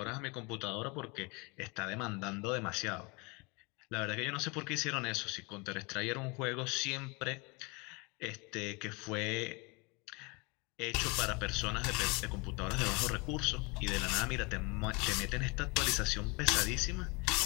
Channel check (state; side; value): quieter; right; 28.7 dB